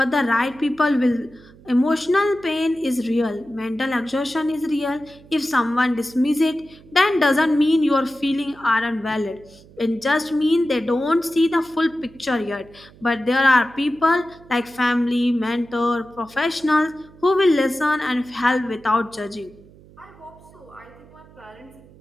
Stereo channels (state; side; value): noise; right; hum, 24 dB below the sound